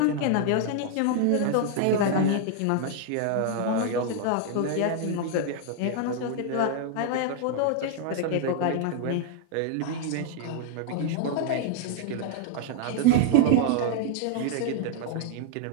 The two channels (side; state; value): both; different; correlation 0.00